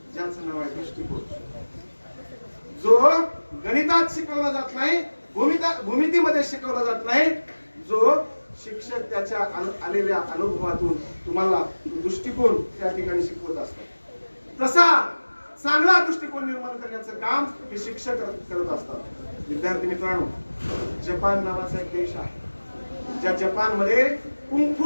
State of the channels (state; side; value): inverted; both; correlation -1.00